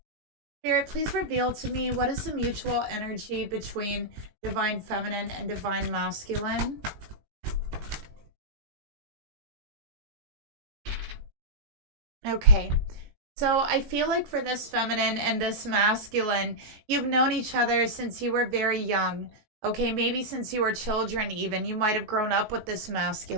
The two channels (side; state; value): left; late; 19 ms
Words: Spirit, please reveal to me what is the mutual energy between divine feminine and divine masculine. Okay, so I feel like for this feminine and this masculine, you've known each other since you were very young. Okay, maybe since you were children even. You might have grown up with this